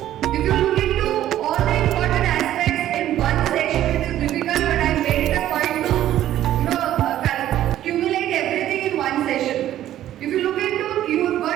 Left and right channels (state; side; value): quieter; left; 12.6 dB